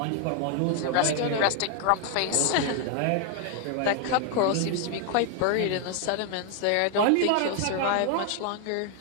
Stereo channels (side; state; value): both; different; correlation 0.00